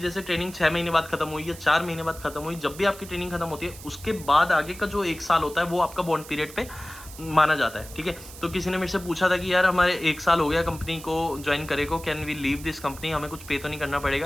ट्रेनिंग 6 महीने बाद खत्म हुई या 4 महीने बाद खत्म हुई, जब भी आपकी ट्रेनिंग खत्म होती है उसके बाद आगे का जो 1 साल होता है वो आपका बॉन्ड पीरियड पे माना जाता है, ठीक है। तो किसी ने मेरे से पूछा था कि यार हमारे 1 साल हो गया कंपनी को ज्वाइन करे को, can we leave this company, हमें कुछ पे तो नहीं करना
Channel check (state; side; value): noise; right; hiss, 16 dB below the sound